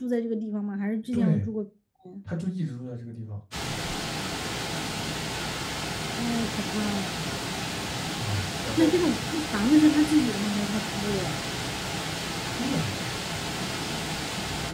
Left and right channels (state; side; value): identical; both; correlation 1.00